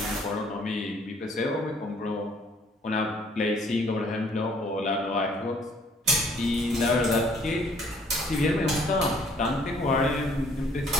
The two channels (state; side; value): normal; both; correlation 0.61